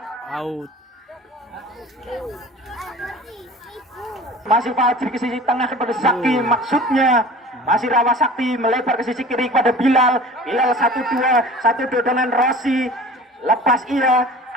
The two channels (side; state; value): both; normal; correlation 0.42